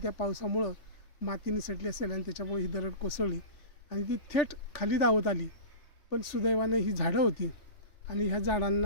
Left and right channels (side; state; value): right; late; 3.4 ms